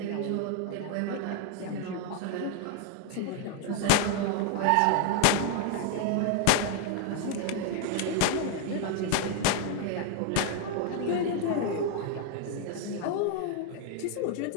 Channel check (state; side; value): different; both; correlation 0.00